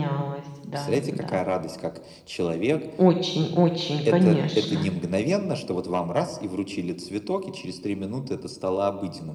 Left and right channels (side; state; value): both; identical; correlation 1.00